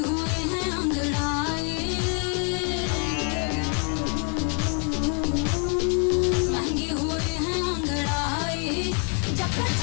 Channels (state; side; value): quieter; right; 38.7 dB